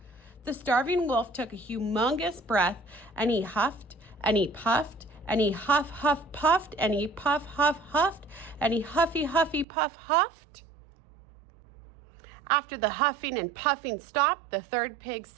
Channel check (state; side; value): drops out; left; at 9.7 s